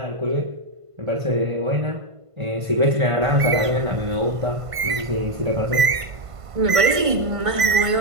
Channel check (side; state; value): left; late; 1.5 ms